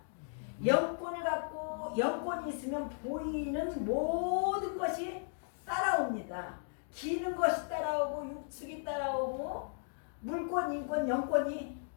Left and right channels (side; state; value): right; silent; digital silence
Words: 영권을 갖고 영권이 있으면 보이는 모든 것이 따라옵니다. 기는 것이 따라오고 육축이 따라오고 물권, 인권, 영권이